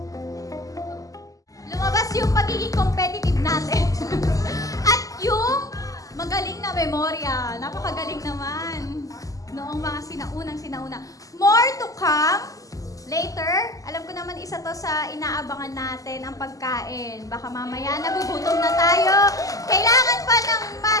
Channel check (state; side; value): late; right; 0.17 ms